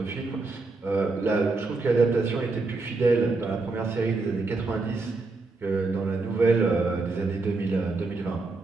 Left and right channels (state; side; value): quieter; left; 3.6 dB